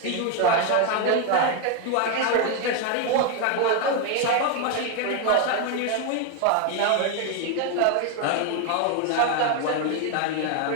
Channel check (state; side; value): different; both; correlation 0.01